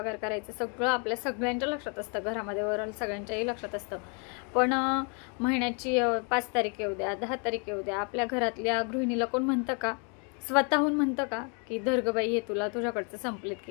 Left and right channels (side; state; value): right; quieter; 37.1 dB